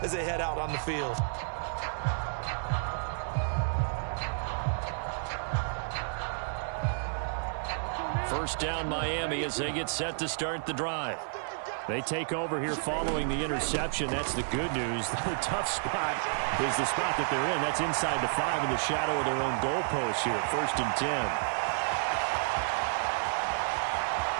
as they head out on the field. First down, Miami, as they get set to start the drive. They take over here following the interception. That's the good news. The tough spot is the spot that they're in. That's inside the 5 in the shadow of their own goalpost here. 1st and 10.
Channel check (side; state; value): left; silent; digital silence